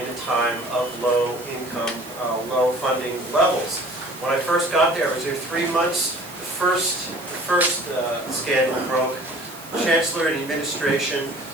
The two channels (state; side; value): noise; right; hiss, 17 dB below the sound